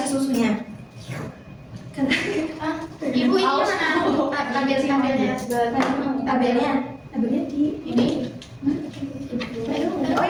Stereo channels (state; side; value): identical; both; correlation 1.00